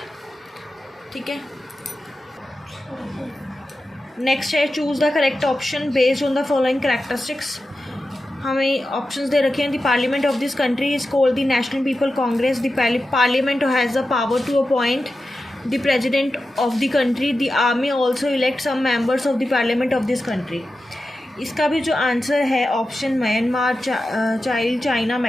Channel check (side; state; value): both; normal; correlation 0.92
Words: ठीक है। नेक्स्ट है, choose the correct option based on the following characteristics. हमें ऑप्शंस दे रखे हैं। The parliament of this country is called the national people congress. The parliament has the power to appoint the president of the country. The army also elect some members of the parliament of this country. इसका भी जो आंसर है ऑप्शन म्यांमार, चाइना,